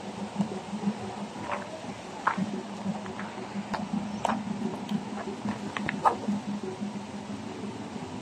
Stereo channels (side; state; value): both; identical; correlation 1.00